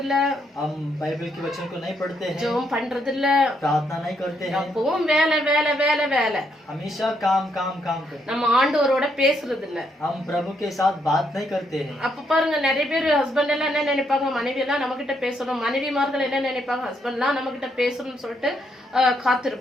இல்ல, हम बाइबल के वचन को नहीं पढ़ते हैं, ஜெபம் பண்றது இல்ல, प्रार्थना नहीं करते हैं, எப்பவும் வேலை வேலை வேலை வேலை. हमेशा काम काम काम करते हैं। நம்ம ஆண்டவரோட பேசுறது இல்ல. हम प्रभु के साथ बात नहीं करते हैं। அப்ப பாருங்க, நிறைய பேர் ஹஸ்பண்ட் எல்லாம் என்ன நினைப்பாங்க, மனைவி எல்லாம் நம்ம கிட்ட பேசணும், மனைவிமார்கள் என்ன நினைப்பாங்க, ஹஸ்பண்ட் எல்லாம் நம்ம கிட்ட பேசணும்னு சொல்லிட்டு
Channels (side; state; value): both; normal; correlation 0.75